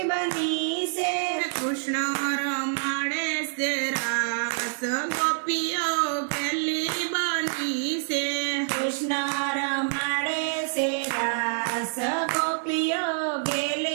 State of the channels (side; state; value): left; silent; digital silence